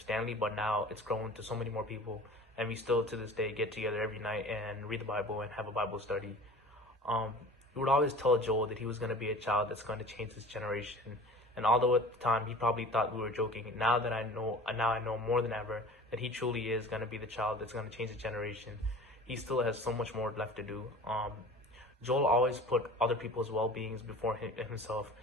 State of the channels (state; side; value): normal; both; correlation 0.41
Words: Stanley, but now it's grown to so many more people, and we still to this day get together every night and read the Bible and have a Bible study. We would always tell Joel that he was going to be a child that's going to change this generation, and although at the time he probably thought we were joking, now I know more than ever that he truly is going to be the child that's going to change the generation. He still has so much more left to do. Joel always put other people's well-beings before himself,